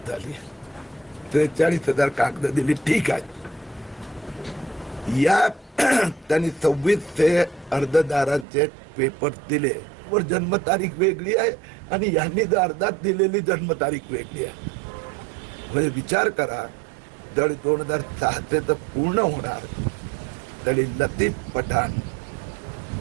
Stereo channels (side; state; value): left; drops out; at 8.5 s